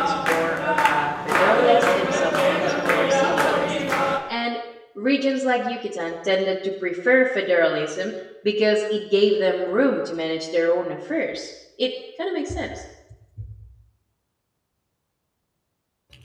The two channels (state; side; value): identical; both; correlation 1.00